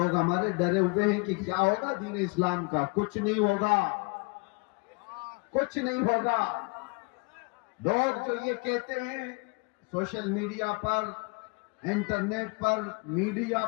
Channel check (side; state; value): right; quieter; 30.3 dB